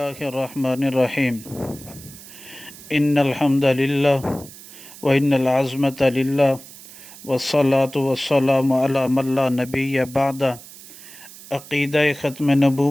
الرحمن الرحیم ان الحمد للہ وان العظمۃ للہ والصلاة والسلام علی من لا نبی بعد۔ عقیدہ ختم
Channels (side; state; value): right; noise; hiss, 18 dB below the sound